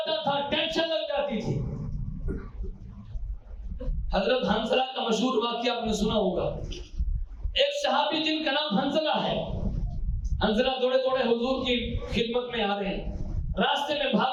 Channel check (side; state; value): both; identical; correlation 1.00